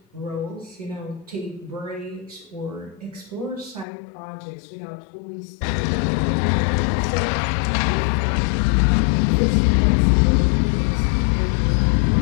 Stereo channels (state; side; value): drops out; right; at 3.9 s